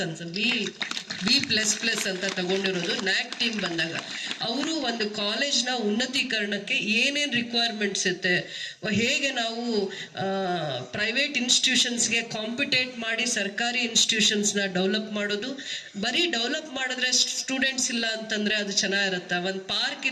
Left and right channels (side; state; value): both; identical; correlation 1.00